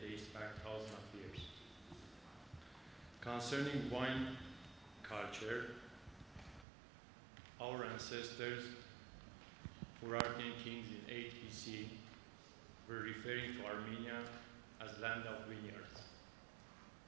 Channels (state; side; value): drops out; left; at 6.7 s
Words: dates back thousands of years. Concerning wine culture, our ancestors, Gharibian kings in 8 BC, were referring to Armenia as land of vineyards.